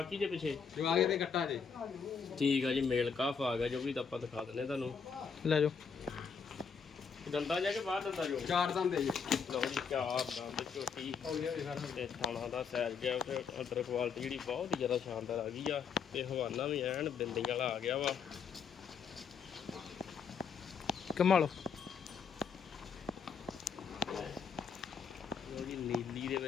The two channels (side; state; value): right; quieter; 6.1 dB